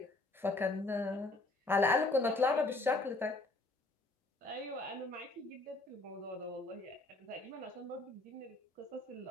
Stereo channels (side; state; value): right; quieter; 3.0 dB